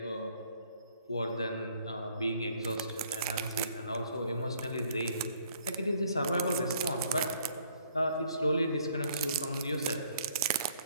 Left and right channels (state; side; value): inverted; both; correlation -0.61